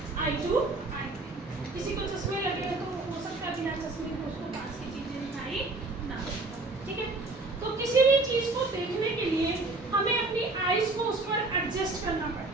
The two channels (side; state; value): left; quieter; 3.2 dB